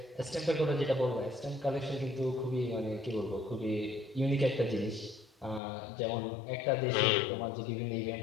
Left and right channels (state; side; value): drops out; right; at 5.6 s